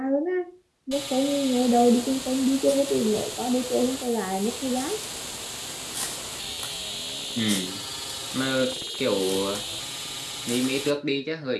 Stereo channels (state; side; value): identical; both; correlation 1.00